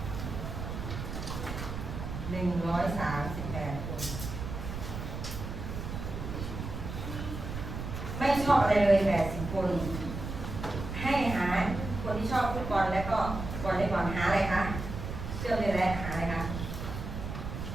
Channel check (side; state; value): right; noise; rumble, 6 dB below the sound